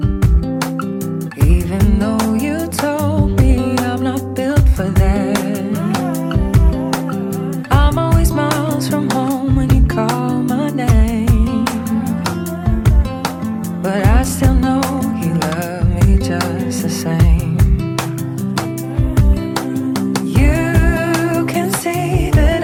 Even though you told me I'm not built for that. I'm always miles from home when you call my name. But I still know you love me just the same. You can see that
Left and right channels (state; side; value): identical; both; correlation 1.00